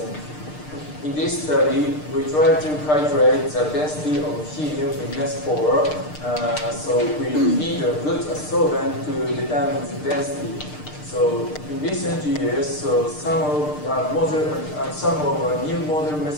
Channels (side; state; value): right; late; 6.6 ms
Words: In this study, we try to calculate the density of helium in mesh pore. So we need a good adsorbent to determine the density. So in recent years, some of new modern